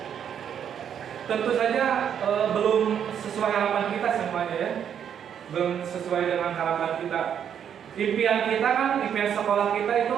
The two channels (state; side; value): quieter; left; 8.6 dB